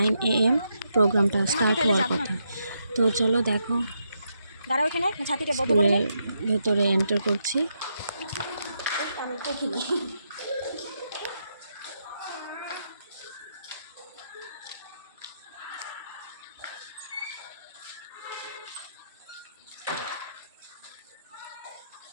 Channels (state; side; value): inverted; both; correlation -0.81